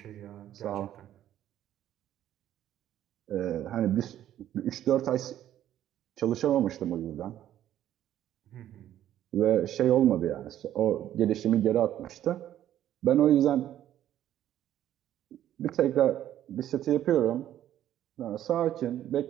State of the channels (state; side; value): quieter; left; 11.8 dB